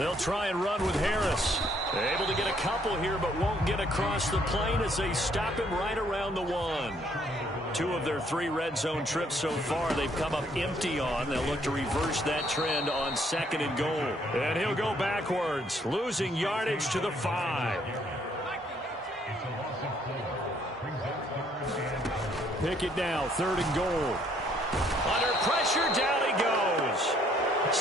try and run with Harris. Able to get a couple here, but won't get across the plane as they stop him right around the 1. 2 of their 3 red zone trips so far they've come up empty on. They'll look to reverse that trend on 2nd and goal. And he'll go backwards, losing yardage to the 5. Pickett now, 3rd and goal. Under pressure, down he goes.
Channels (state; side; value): normal; both; correlation 0.66